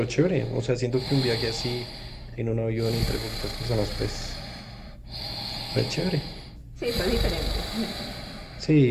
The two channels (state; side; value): identical; both; correlation 1.00